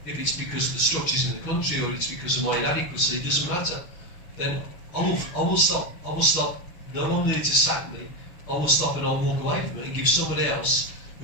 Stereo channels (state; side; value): late; right; 6.3 ms